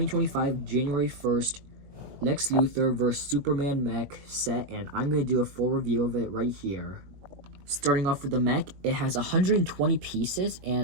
January 1st Lex Luthor vs. Superman Mech set, and I'm going to do a full review of it right here. Starting off with the Mech, it has 120 pieces,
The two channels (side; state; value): left; late; 21 ms